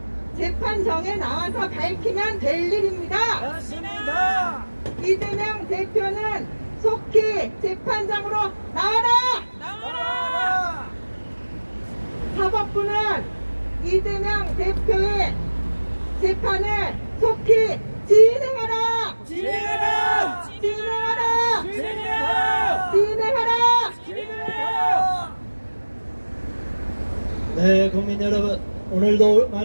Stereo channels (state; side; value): inverted; both; correlation -1.00